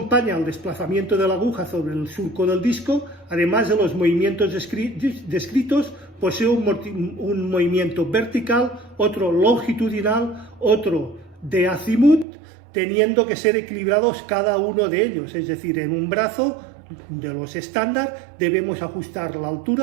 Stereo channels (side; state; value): left; drops out; at 12.2 s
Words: al desplazamiento de la aguja sobre el surco del disco, además de los movimientos descritos, posee un movimiento vertical, otro longitudinal, otro de azimut, teniendo que ser equilibrados cada uno de ellos. Es decir, en un brazo de los estándar debemos ajustar la